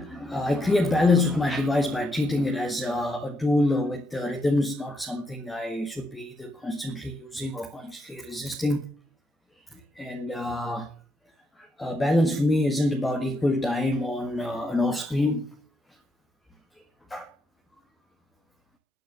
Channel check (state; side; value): normal; both; correlation 0.79